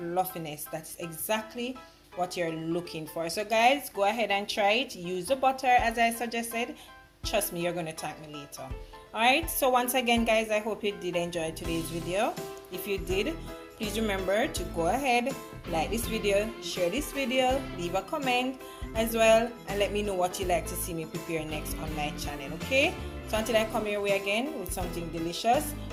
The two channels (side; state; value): both; identical; correlation 1.00